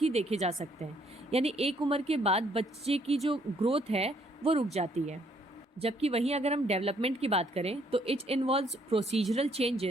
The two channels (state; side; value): normal; both; correlation 0.67